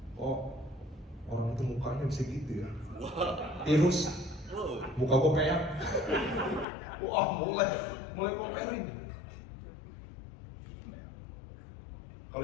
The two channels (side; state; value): right; drops out; at 6.7 s